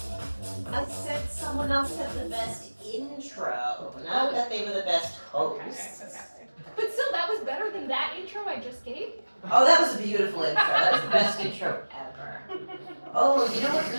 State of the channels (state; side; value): inverted; both; correlation -1.00